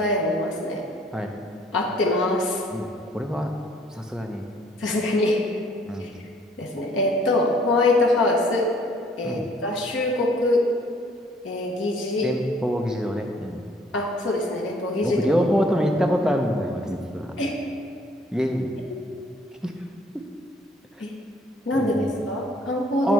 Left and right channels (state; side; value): normal; both; correlation 0.60